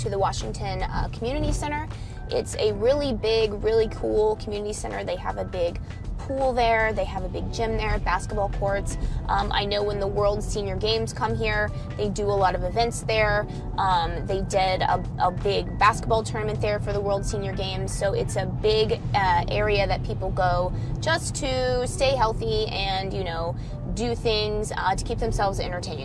the Washington Community Center. It's a really big, really cool community center. They have a big pool there, they have a big gym there, basketball courts. I know when the World Senior Games come here, they do a lot of events there. They did a big basketball tournament there for the World Senior Games, so it's a big area that people go just to stay healthy and, you know, do things to keep themselves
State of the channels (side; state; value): both; identical; correlation 1.00